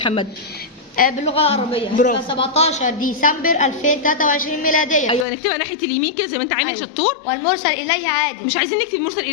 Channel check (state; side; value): drops out; right; at 5.2 s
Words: باللغه العربيه. برافو. 17 ديسمبر 2023 ميلاديه. ايوه نكتبها ناحيه اليمين كده زي ما انت عامل. أيوة. شطور. والمرسل اليه عادل. مش عايزين نكتب مرسل